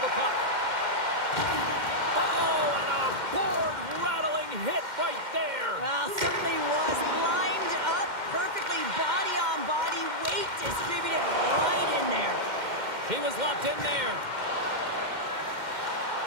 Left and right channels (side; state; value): left; late; 2.1 ms